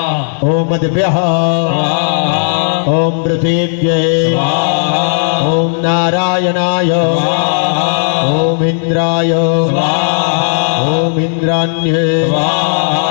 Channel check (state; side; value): silent; right; digital silence